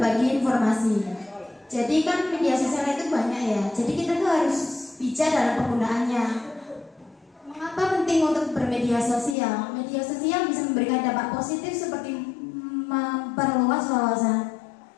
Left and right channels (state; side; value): drops out; right; at 9.3 s